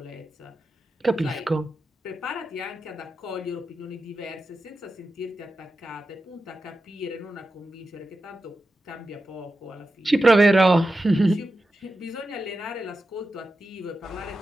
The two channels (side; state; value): both; normal; correlation 0.91